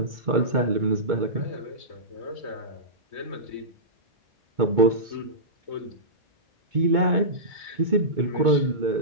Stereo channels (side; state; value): left; late; 2.2 ms